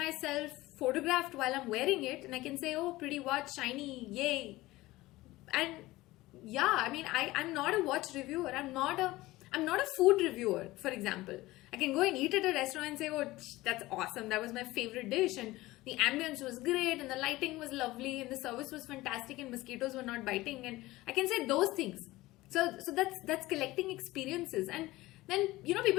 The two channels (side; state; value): right; quieter; 18.6 dB